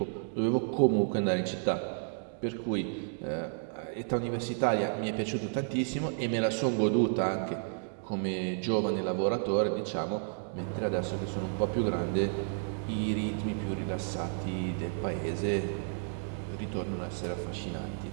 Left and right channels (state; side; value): silent; left; digital silence